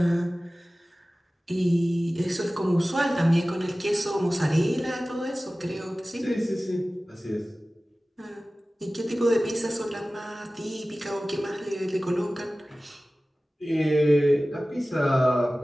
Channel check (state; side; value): normal; both; correlation 0.97